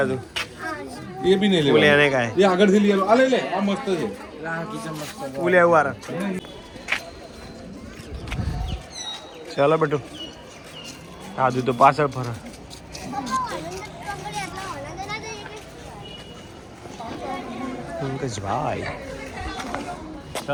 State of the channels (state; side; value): identical; both; correlation 1.00